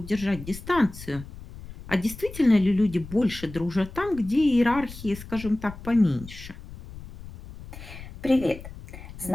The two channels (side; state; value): left; noise; rumble, 14 dB below the sound